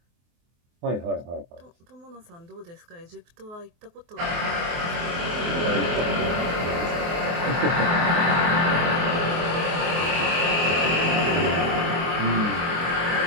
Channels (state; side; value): late; left; 24 ms